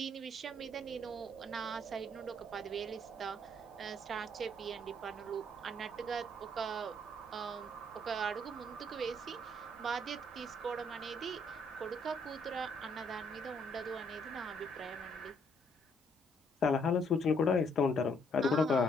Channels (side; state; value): both; normal; correlation 0.68